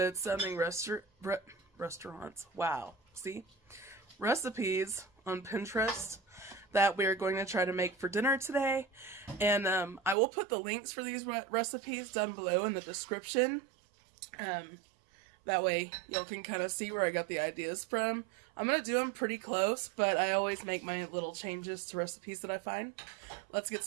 sounding restaurants. Wow. See? Recipes on Pinterest that we're going to try to make for dinner today. And I will put the links for these recipes down below in the description. That way y'all can kind of see where I got the ideas from. I'm going to do them pretty close, but I always make my little changes to recipes that I find. Let's get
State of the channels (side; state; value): left; drops out; at 10.2 s